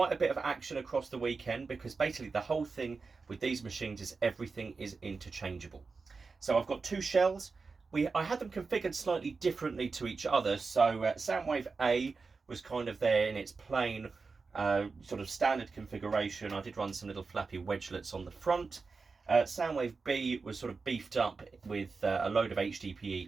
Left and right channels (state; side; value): quieter; left; 4.5 dB